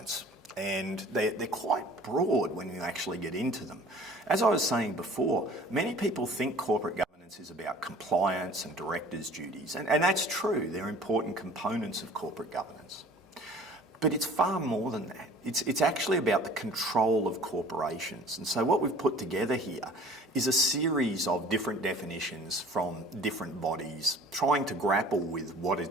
and they're quite broad when you actually get into them. As I was saying before, many people think corporate governance is about compliance and directors' duties, and that's true. They're important components of corporate governance. But it's far more than that. It's actually about the control of corporations. And so what we've put together here is a series of different definitions from different bodies trying to grapple with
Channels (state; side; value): normal; both; correlation 0.48